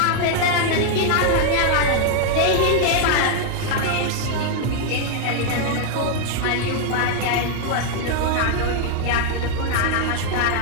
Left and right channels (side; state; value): both; different; correlation 0.00